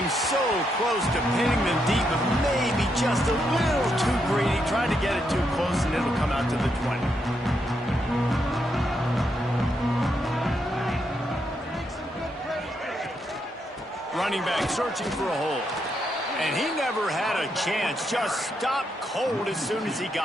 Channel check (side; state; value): both; normal; correlation 0.80